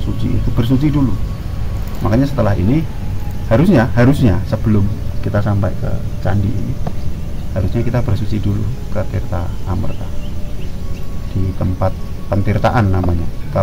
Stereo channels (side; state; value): both; identical; correlation 1.00